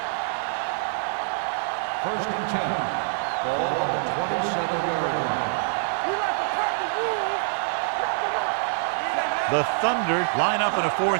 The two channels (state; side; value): silent; left; digital silence